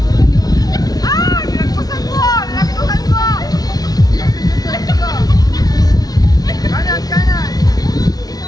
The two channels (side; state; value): right; late; 0.19 ms